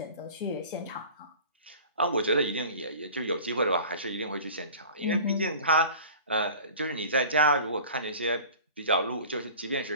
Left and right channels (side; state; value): both; inverted; correlation -0.42